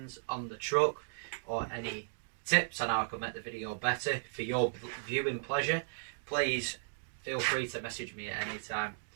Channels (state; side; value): silent; left; digital silence